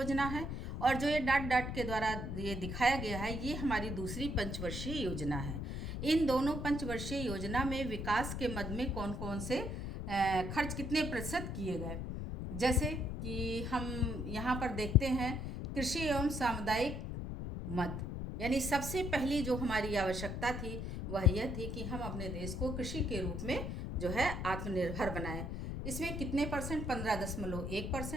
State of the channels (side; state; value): left; noise; rumble, 5 dB below the sound